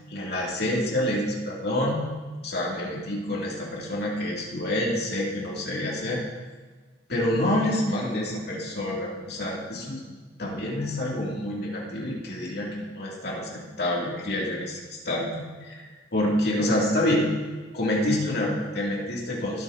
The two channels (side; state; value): both; normal; correlation 0.47